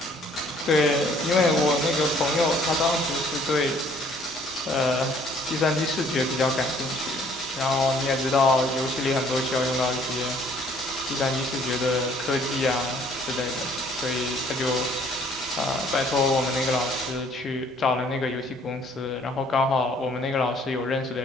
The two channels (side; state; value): both; normal; correlation 0.59